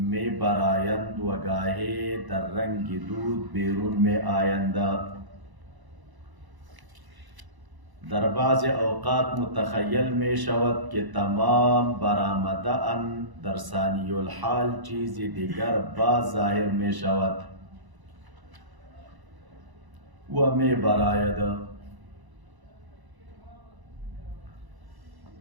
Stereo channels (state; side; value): late; left; 1.0 ms